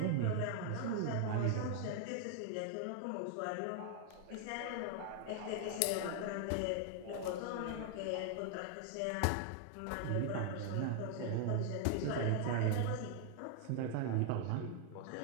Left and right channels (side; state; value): both; different; correlation 0.00